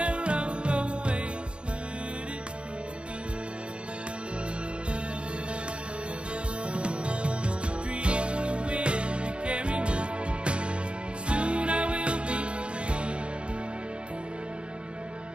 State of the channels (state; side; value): late; left; 0.057 ms